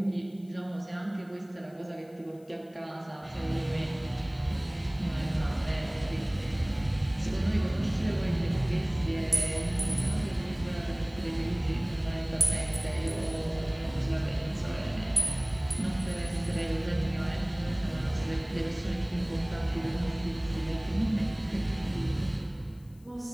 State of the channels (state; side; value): noise; left; hiss, 30 dB below the sound